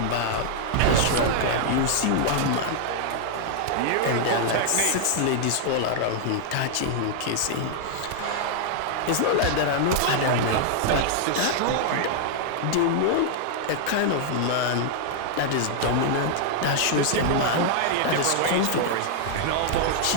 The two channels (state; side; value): different; both; correlation -0.01